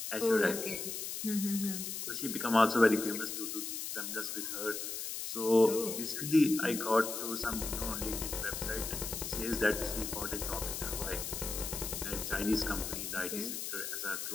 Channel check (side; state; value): left; noise; hiss, 5 dB below the sound